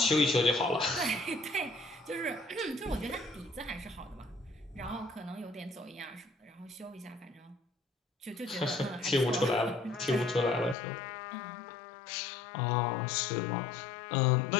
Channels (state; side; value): drops out; right; at 10.8 s